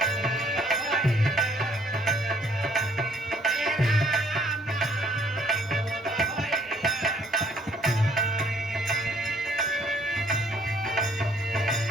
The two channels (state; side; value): normal; both; correlation 0.63